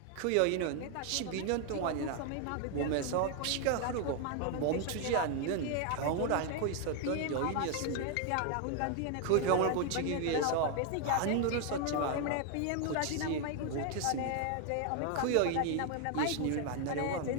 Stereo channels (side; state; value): both; different; correlation 0.00